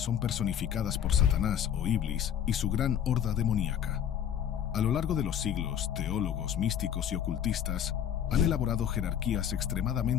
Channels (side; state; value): right; quieter; 9.4 dB